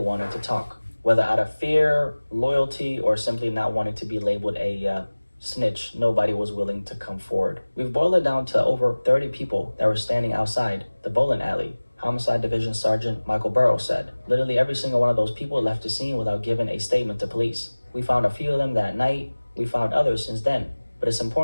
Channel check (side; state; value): both; inverted; correlation -1.00